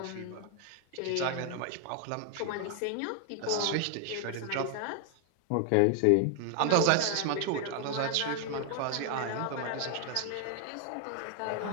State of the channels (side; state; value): both; different; correlation 0.00